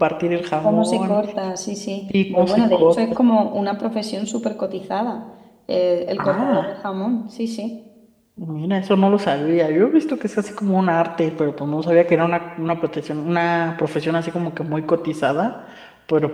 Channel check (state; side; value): identical; both; correlation 1.00